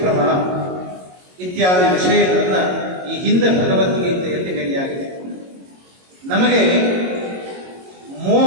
ಇತ್ಯಾದಿ ವಿಷಯಗಳನ್ನು ಈ ಹಿಂದೆ ಭಗವದ್ಗೀತೆಯಲ್ಲಿ ಹೇಳಿಯಾಗಿದೆ. ನಮಗೆ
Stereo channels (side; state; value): left; late; 22 ms